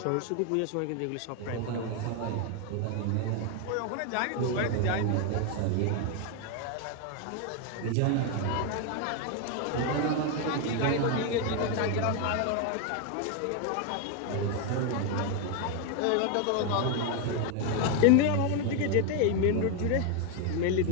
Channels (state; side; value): different; both; correlation 0.01